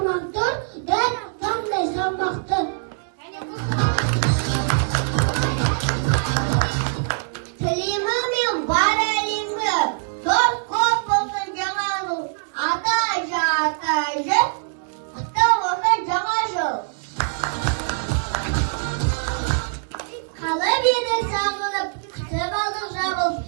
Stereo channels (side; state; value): left; silent; digital silence